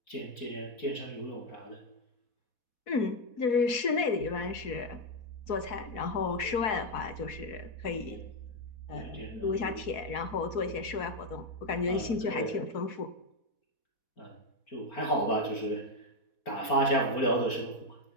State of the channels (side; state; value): right; late; 4.1 ms